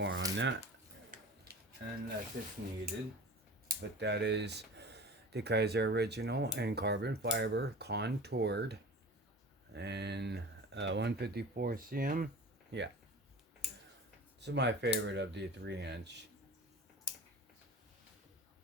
on that unless it's needed, but that is the Kizer Original in carbon fiber, contoured, and 154 cm. Yeah, this is my favorite of the 3-inch.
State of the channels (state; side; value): normal; both; correlation 0.37